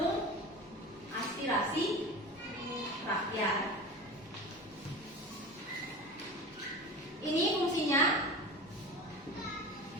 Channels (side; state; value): both; normal; correlation 0.32